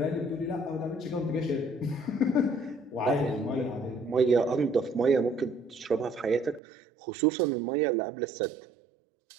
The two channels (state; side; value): drops out; left; at 6.6 s